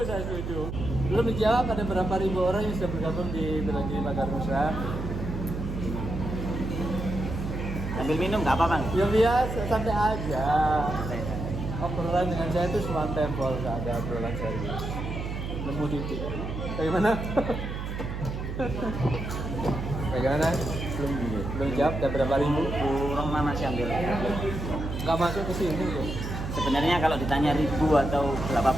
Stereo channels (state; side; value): noise; right; hum, 5 dB below the sound